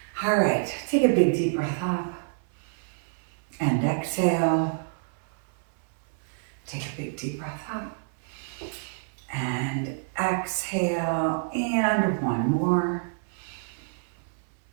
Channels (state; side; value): silent; left; 60 dB below the other